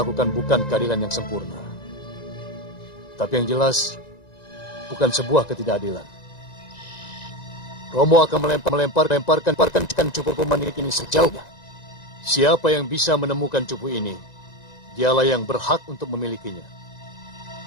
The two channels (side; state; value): right; late; 1.9 ms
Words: bukan keadilan yang sempurna. Tapi yang jelas, bukan sebuah ketidakadilan. Romo akan melemparkan cupu pemanik ini sejauhnya. Siapa yang bisa menemukan cupu ini, dialah yang berhak untuk memilikinya.